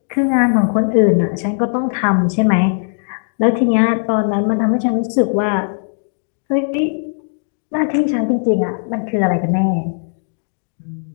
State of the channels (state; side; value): silent; right; digital silence